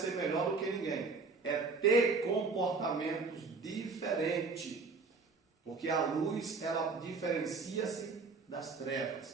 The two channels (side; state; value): left; quieter; 4.3 dB